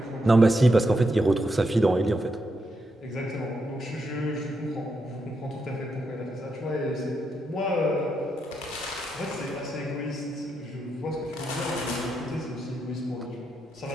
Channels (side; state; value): both; normal; correlation 0.82